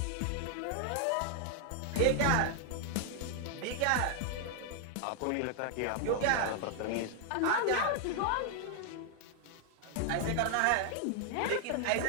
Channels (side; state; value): both; different; correlation 0.00